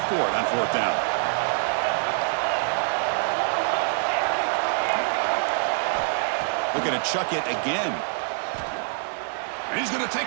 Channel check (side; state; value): left; silent; 62 dB below the other